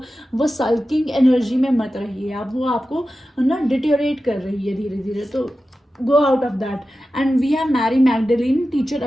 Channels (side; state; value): both; normal; correlation 0.93